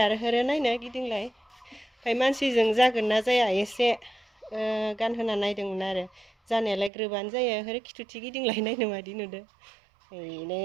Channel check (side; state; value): left; drops out; at 6.9 s